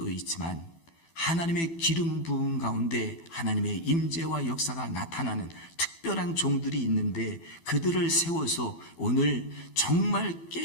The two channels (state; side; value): late; right; 12 ms